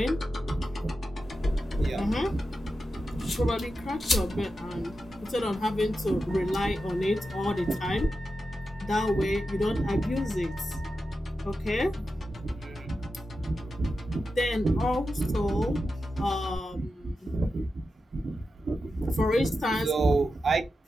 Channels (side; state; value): both; normal; correlation 0.90